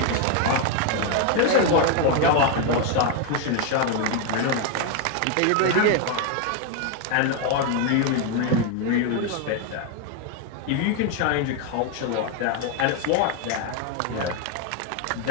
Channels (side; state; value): both; different; correlation 0.01